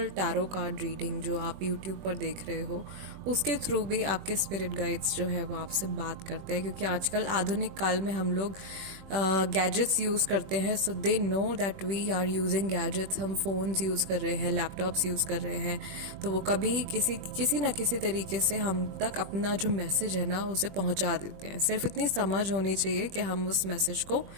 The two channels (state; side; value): late; left; 21 ms